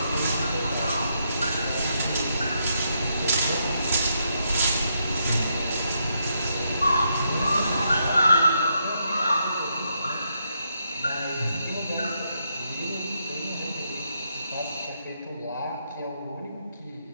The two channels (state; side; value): inverted; both; correlation -0.79